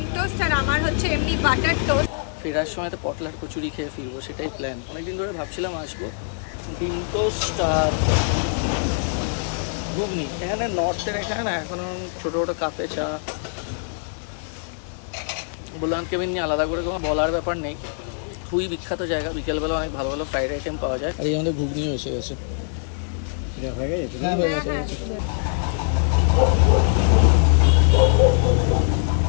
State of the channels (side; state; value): right; silent; digital silence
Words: টোস্ট, আর আমার হচ্ছে এমনি বাটার টোস্ট। ফেরার সময় তো পটলার কচুরি খেয়ে ফিরবো, সেটাই প্ল্যান। অনেকদিন ধরে ভাবছিলাম আসবো। ডিম টোস্ট আর ঘুগনি। এখানে নর্থের এখানে না এখন ছোটো ছোটো কাপে চা। ভোলানাথ কেবিন নিয়ে আলাদা করে কোনো বলার ব্যাপার নেই, খুবই বিখ্যাত জায়গা। বিকেলবেলা অনেক ভালো ভালো ফ্রাইড আইটেম পাওয়া যায়। আর এই আমাদের ঘুগনিও এসে গেছে। হ্যাঁ, হয়ে গেছে।